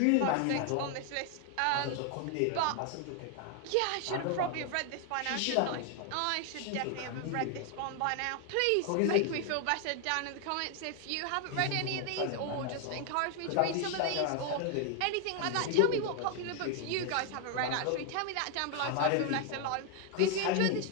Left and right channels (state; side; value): different; both; correlation 0.00